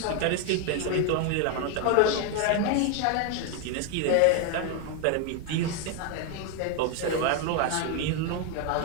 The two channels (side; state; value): both; different; correlation 0.01